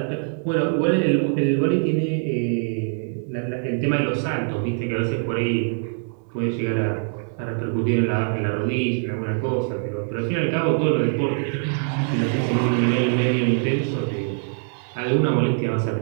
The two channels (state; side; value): silent; left; 56 dB below the other